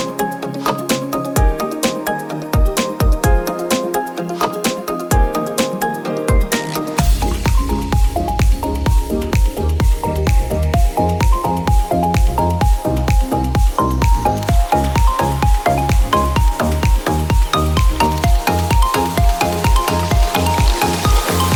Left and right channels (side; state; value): both; identical; correlation 1.00